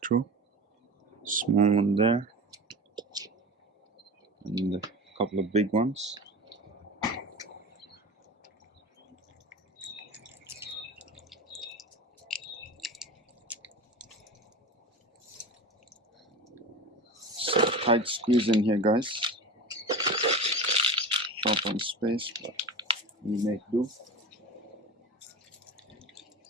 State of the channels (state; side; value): normal; both; correlation 0.30